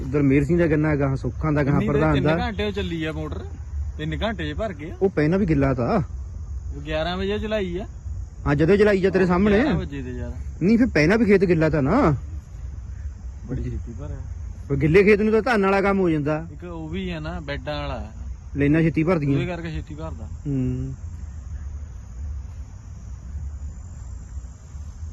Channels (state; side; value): identical; both; correlation 1.00